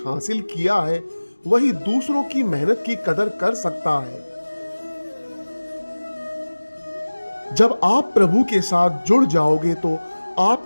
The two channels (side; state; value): both; inverted; correlation -1.00